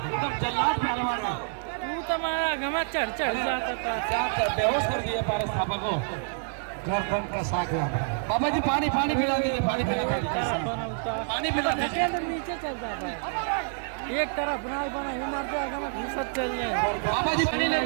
एकदम जल्लाद पहलवान है। तू तो मारा गमा चढ़ जाता था, क्या बेहोश कर दिया पारस थापा को। गर्दन कसा गया। बाबा जी पानी पानी पिला दीजिए, पानी पिला दीजिए, पानी पिला दीजिए। नीचे चल जाता है, एक तरफ बना ही मर जाएगा, मैं घुसत चल जाए। बाबा जी पानी ले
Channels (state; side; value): silent; left; digital silence